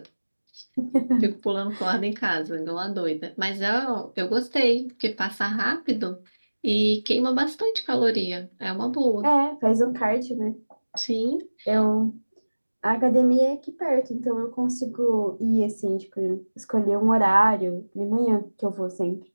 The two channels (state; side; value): inverted; both; correlation -1.00